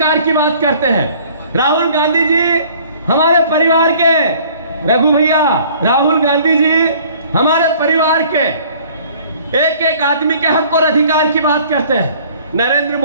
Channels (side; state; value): both; inverted; correlation -0.54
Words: की बात करते हैं। राहुल गांधी जी हमारे परिवार के, रघु भैया, राहुल गांधी जी हमारे परिवार के एक एक आदमी के हक और अधिकार की बात करते हैं। नरेंद्र